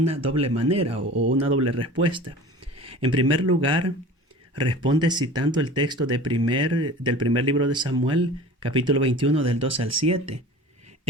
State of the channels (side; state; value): both; normal; correlation 0.40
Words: doble manera o una doble respuesta. En primer lugar, responde citando el texto del primer libro de Samuel, capítulo 21, del 2 al 7,